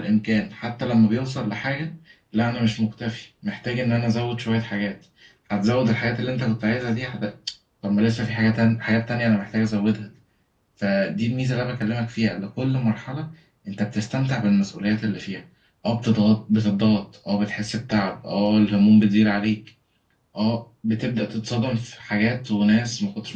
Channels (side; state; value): both; identical; correlation 1.00